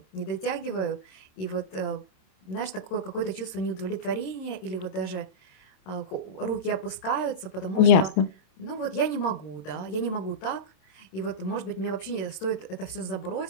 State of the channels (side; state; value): right; late; 27 ms